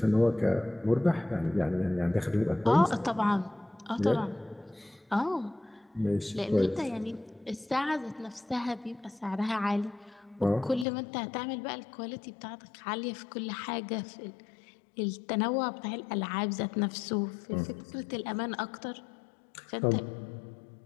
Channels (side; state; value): right; drops out; at 10.9 s